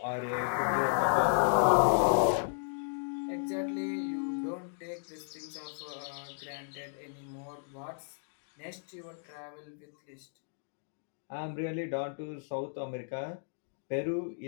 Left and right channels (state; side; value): silent; right; digital silence